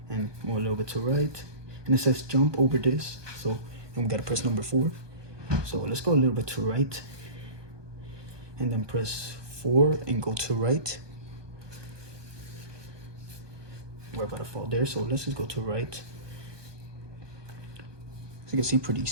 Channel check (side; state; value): left; late; 1.2 ms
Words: and move a little bit to right, and it says jump over this, so and we gotta press number 4. So let's go a little bit to right, and then press 4 and go to right. We're about to fall there, so let's just go to right. As you can see, pretty